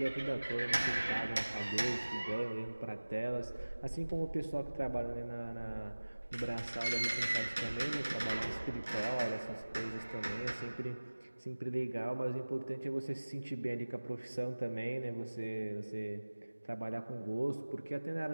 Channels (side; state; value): both; inverted; correlation -1.00